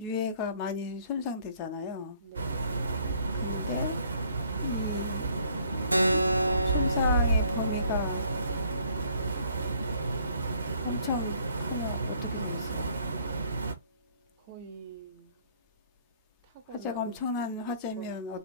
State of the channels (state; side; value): inverted; both; correlation -0.61